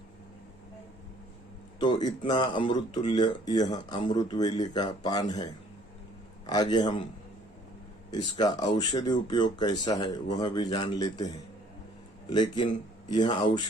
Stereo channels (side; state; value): both; normal; correlation 0.59